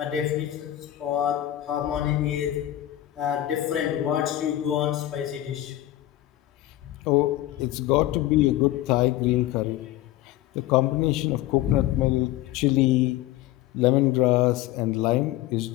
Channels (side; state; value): right; quieter; 14.4 dB